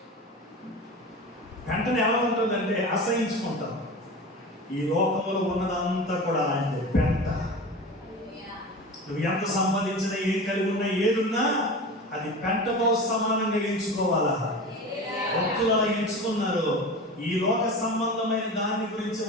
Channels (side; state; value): both; normal; correlation 0.31